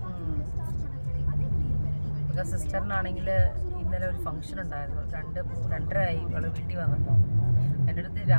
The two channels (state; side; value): inverted; both; correlation -1.00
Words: ബിക്കോസ് സിസ്റ്ററിനാണെങ്കിൽ ഇന്നലെ ഒരു ഫംഗ്ഷൻ ഉണ്ടായിരുന്നു. 2:30 ആയി ഇവള് വീട്ടിൽ വന്നപ്പോൾ. എൻ്റെ അടുത്ത്